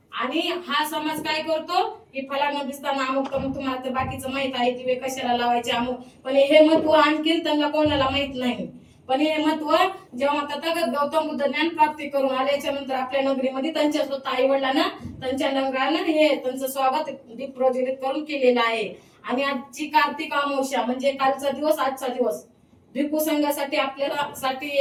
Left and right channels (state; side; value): identical; both; correlation 1.00